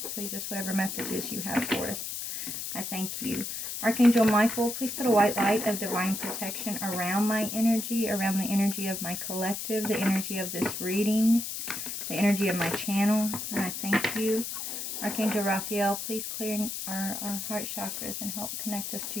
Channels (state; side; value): noise; left; hiss, 5 dB below the sound